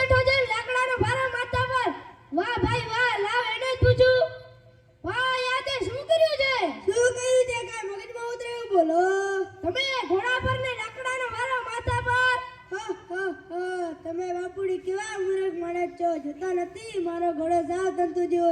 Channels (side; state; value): both; identical; correlation 1.00